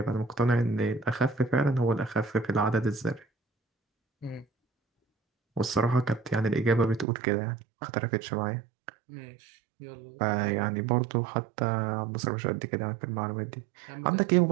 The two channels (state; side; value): drops out; left; at 7.1 s